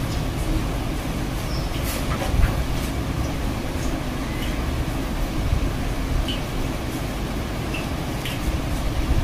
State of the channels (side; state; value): both; identical; correlation 1.00